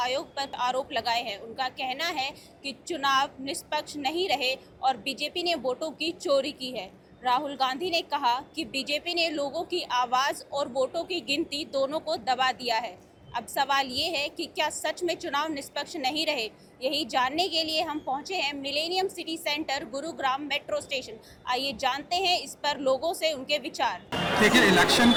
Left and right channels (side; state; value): both; identical; correlation 1.00